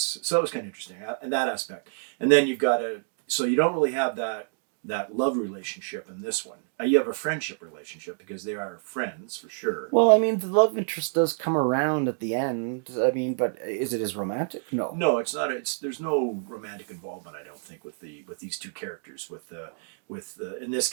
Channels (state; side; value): silent; left; digital silence